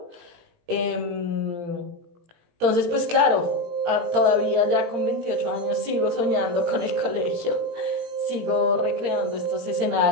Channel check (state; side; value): late; left; 17 ms